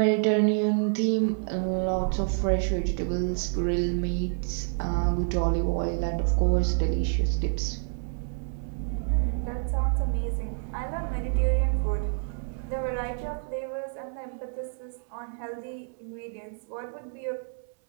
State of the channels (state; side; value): silent; left; 59 dB below the other